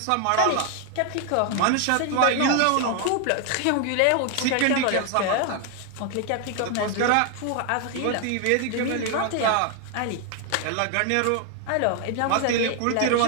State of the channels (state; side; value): different; both; correlation 0.01